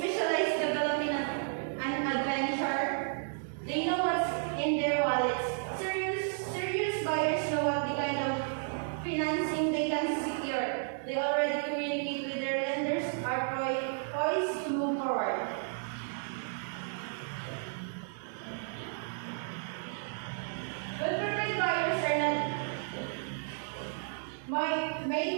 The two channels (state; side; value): silent; left; digital silence